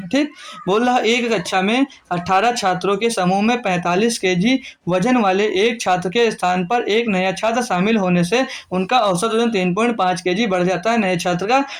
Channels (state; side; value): identical; both; correlation 1.00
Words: ठीक। बोल रहा एक कक्षा में 18 छात्रों के समूह में 45 kg वजन वाले एक छात्र के स्थान पर एक नया छात्र शामिल होने से उनका औसत वजन 3.5 kg बढ़ जाता है। नए छात्र का